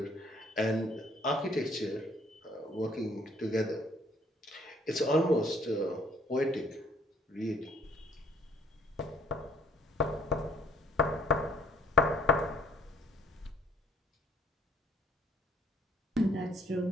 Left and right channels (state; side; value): normal; both; correlation 0.60